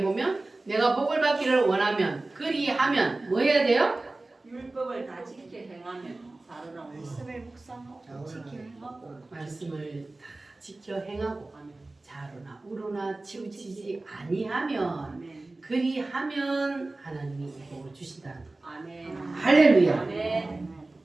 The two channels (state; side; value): quieter; left; 3.0 dB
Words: 보면 내가 복을 받기를 원하면 그리하면 뭐 해야 돼요? 율법을 다 지켜 행하면 살으라고. 말씀을 묵상하고 지켜 행하고 말씀을 다 지켜 행하고 아멘. 자로나 우로나 치우치지 아니하면 아멘. 그리하면 하나님이 복을 주신다는 거. 아멘. 할렐루야. 아멘.